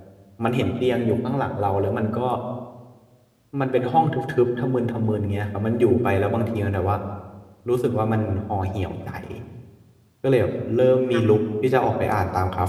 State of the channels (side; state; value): both; identical; correlation 1.00